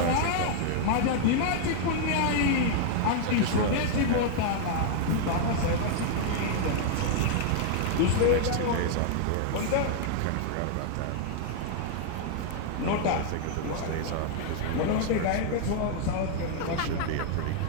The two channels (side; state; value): both; different; correlation 0.00